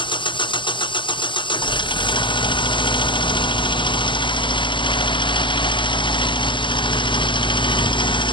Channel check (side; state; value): right; late; 0.24 ms